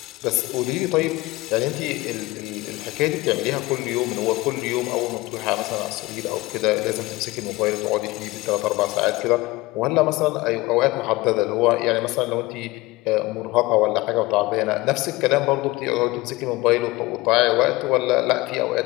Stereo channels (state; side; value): quieter; right; 20.8 dB